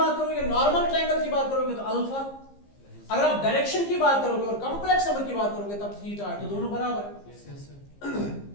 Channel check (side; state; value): right; late; 15 ms